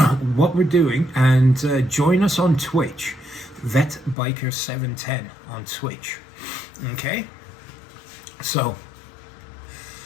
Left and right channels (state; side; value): drops out; right; at 4.2 s